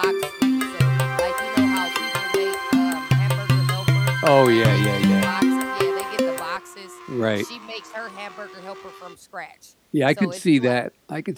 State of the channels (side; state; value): both; identical; correlation 1.00